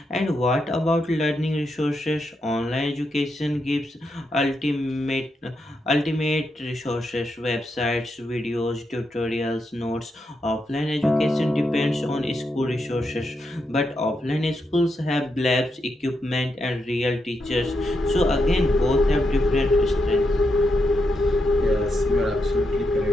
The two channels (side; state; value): both; normal; correlation 0.83